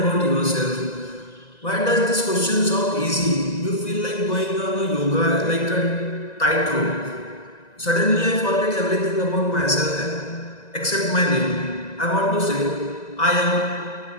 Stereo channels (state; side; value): late; right; 2.0 ms